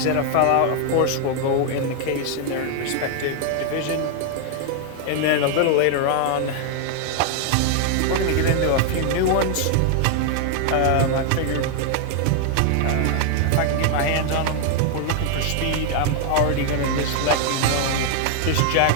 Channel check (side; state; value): both; different; correlation 0.00